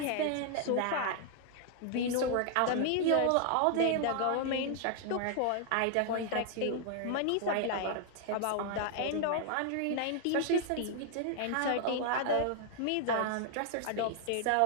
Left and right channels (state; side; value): different; both; correlation 0.00